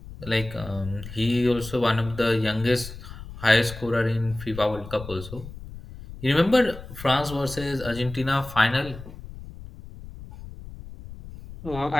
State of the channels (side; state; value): left; noise; rumble, 14 dB below the sound